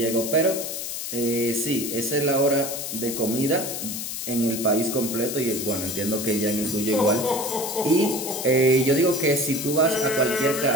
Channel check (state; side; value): noise; left; hiss, 5 dB below the sound